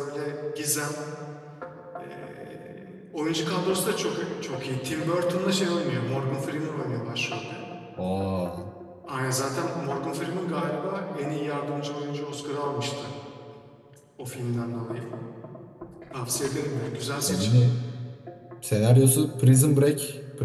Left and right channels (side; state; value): both; identical; correlation 1.00